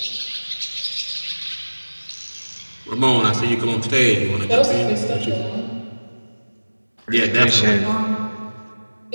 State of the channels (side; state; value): both; inverted; correlation -1.00